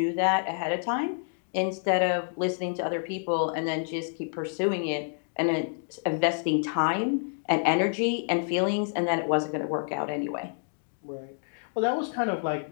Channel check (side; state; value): right; silent; digital silence